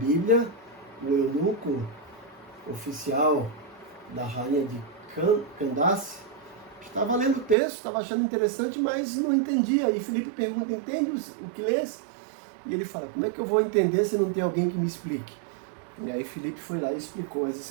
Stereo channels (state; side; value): drops out; left; at 7.6 s